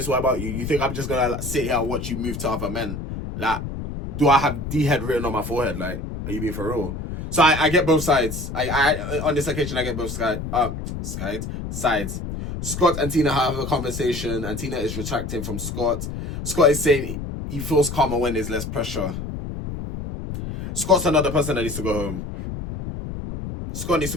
way about you, you think I'm just gonna sit here and watch you move to other men? Like, do I have D-head written on my forehead? Like, are you being for real? So I get both sides. I on this occasion I get both sides. Scott and Tina have a conversation, and Tina is retracting from Scott. Scott is saying he feels calmer when there's less pressure. Scott's another person that needs to go home. Scott needs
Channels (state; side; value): noise; left; rumble, 6 dB below the sound